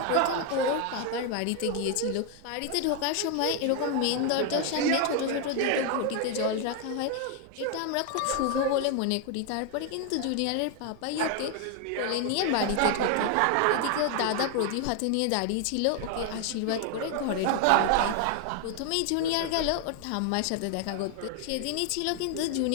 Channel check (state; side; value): different; both; correlation 0.01